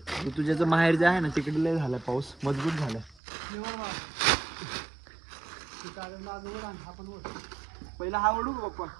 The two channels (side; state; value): left; drops out; at 3.2 s